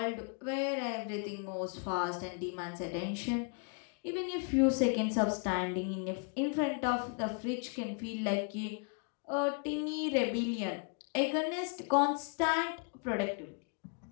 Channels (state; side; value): quieter; right; 38.8 dB